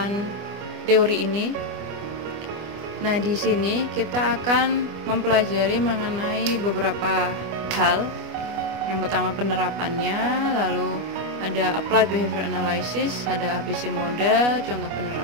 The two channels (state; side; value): late; left; 25 ms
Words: teori ini. Nah, di sini kita akan mempelajari mengenai beberapa hal. Yang pertama penerapannya, lalu ada Applied Behavior Analysis, ada ABC model, contoh